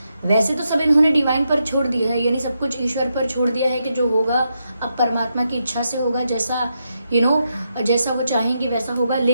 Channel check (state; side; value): inverted; both; correlation -0.83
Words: वैसे तो सब इन्होंने डिवाइन पर छोड़ दिया है, यानी सब कुछ ईश्वर पर छोड़ दिया है कि जो होगा अब परमात्मा की इच्छा से होगा, जैसा जैसा वो चाहेंगे वैसा होगा।